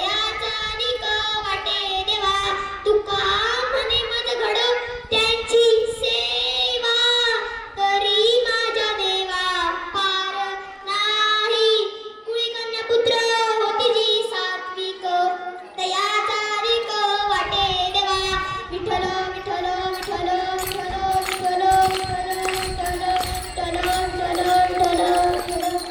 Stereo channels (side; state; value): both; identical; correlation 1.00